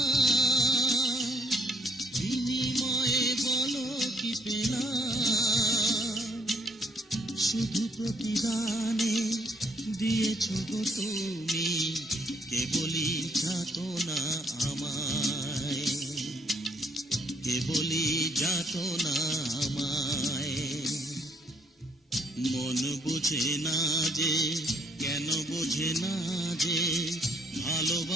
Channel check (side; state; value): both; normal; correlation 0.67